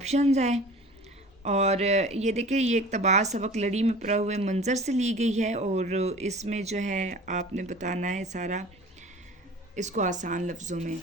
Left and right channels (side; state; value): both; normal; correlation 0.42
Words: ہیں. اور یہ دیکھیں یہ اقتباس سبق لڑی میں پڑے ہوئے منظر سے لی گئی ہے اور اس میں جو ہے آپ نے بتانا ہے سارا اس کو آسان لفظوں میں.